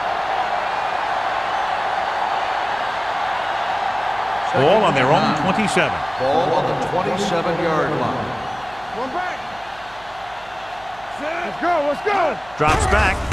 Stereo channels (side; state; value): right; noise; hum, 23 dB below the sound